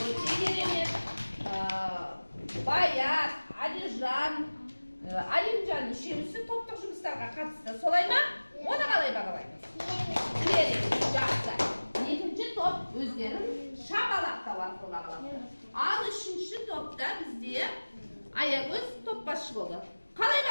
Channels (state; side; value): inverted; both; correlation -1.00